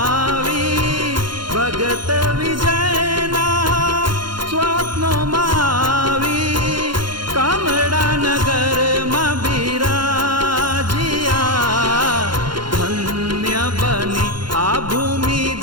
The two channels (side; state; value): left; late; 0.72 ms